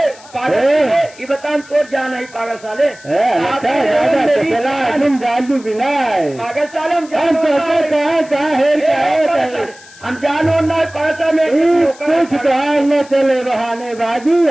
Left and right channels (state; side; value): noise; left; hiss, 22 dB below the sound